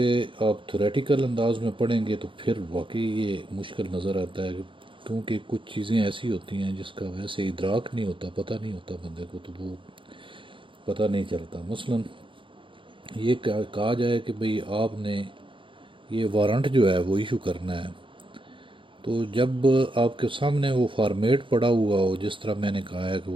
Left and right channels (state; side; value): late; left; 0.25 ms